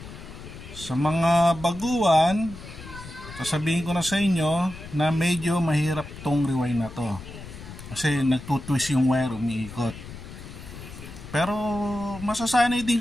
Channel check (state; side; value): noise; left; rumble, 14 dB below the sound